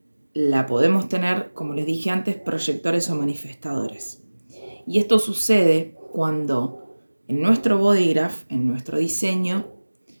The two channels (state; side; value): inverted; both; correlation -1.00